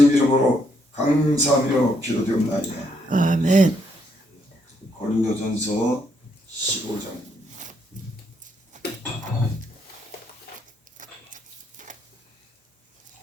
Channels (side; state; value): both; normal; correlation 0.74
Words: 이름으로 감사하며 기도되옵나이다. 아멘. 고린도전서 15장.